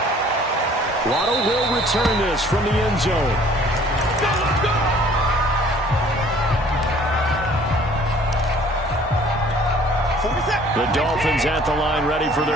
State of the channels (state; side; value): normal; both; correlation 0.54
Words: Waddle will return this from the end zone. The Dolphins at the line ready for